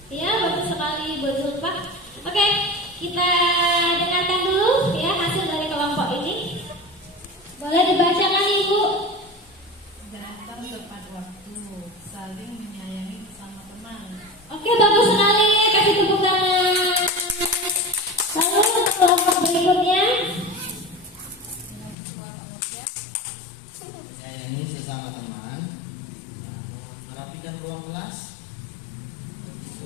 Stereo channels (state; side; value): drops out; right; at 22.0 s